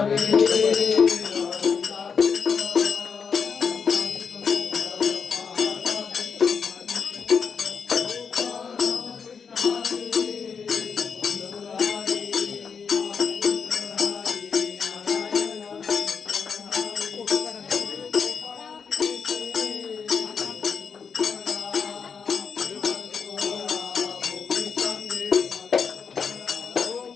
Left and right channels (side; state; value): right; quieter; 6.1 dB